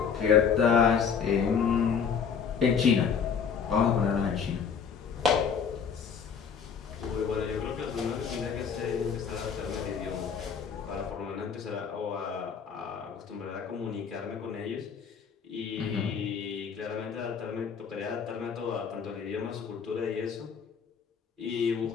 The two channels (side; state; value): right; quieter; 6.7 dB